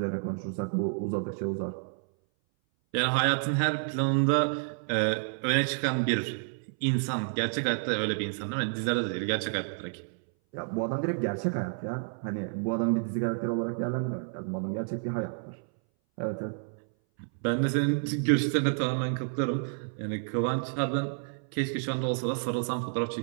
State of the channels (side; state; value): left; silent; 58 dB below the other